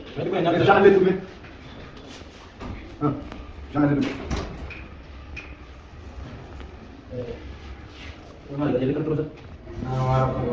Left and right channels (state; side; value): identical; both; correlation 1.00